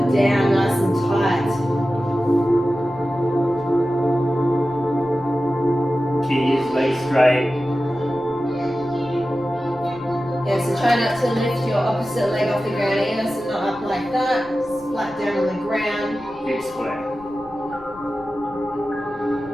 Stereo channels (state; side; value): noise; left; rumble, 24 dB below the sound